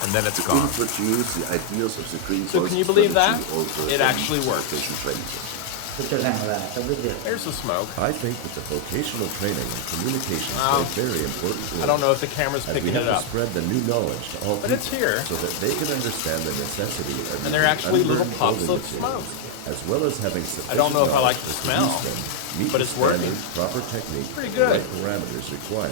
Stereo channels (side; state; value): both; different; correlation 0.00